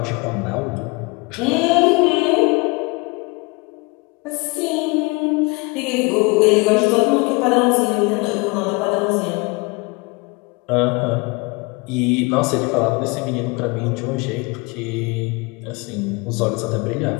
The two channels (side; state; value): right; quieter; 27.4 dB